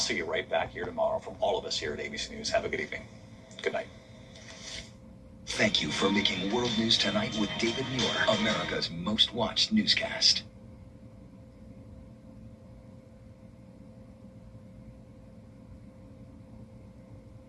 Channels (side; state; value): both; identical; correlation 1.00